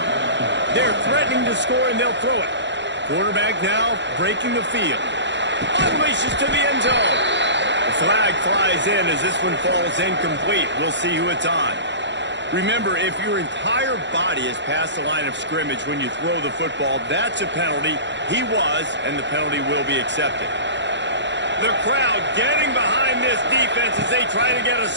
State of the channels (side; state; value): left; late; 0.52 ms